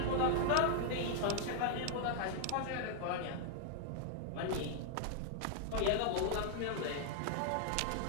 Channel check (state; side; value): different; both; correlation 0.00